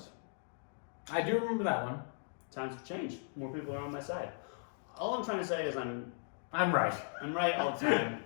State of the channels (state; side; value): silent; right; digital silence